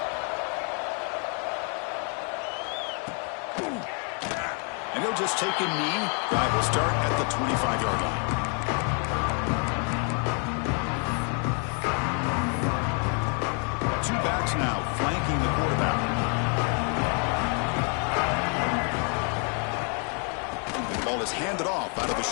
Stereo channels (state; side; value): quieter; right; 39.8 dB